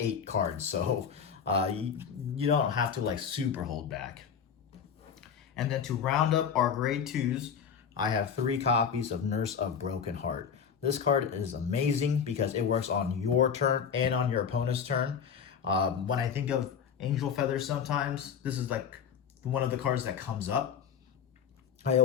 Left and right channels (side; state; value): right; quieter; 7.3 dB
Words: cards, so you don't have to like super hold back. And then to round up our grade 2s, I have 3 copies of Nurse of Broken Heart. This card is amazing because it works on your turn and on your opponent's turn. When I think of Angel Feather sometimes, this is like one of the cards that comes up. I